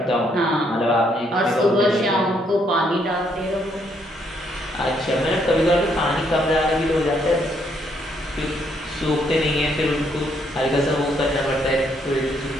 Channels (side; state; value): both; normal; correlation 0.72